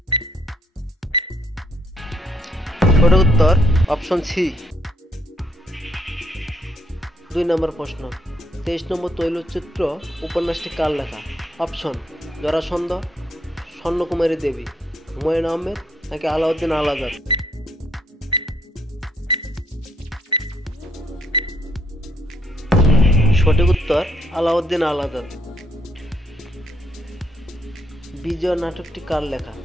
সঠিক উত্তর অপশন সি। 2 নম্বর প্রশ্ন, 23 নম্বর তৈলচিত্র উপন্যাসটি কার লেখা? অপশন জরাসন্ধ, স্বর্ণকুমারী দেবী, হুমায়ুন আহমেদ নাকি আলাউদ্দিন আল আজাদ? সঠিক উত্তর আলাউদ্দিন আল আজাদ। বিজয় নাটকটি কার লেখা?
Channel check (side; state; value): both; normal; correlation 0.70